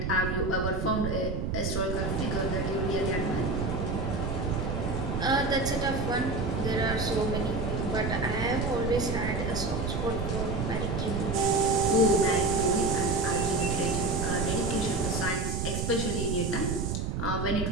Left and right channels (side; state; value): right; noise; rumble, 2 dB below the sound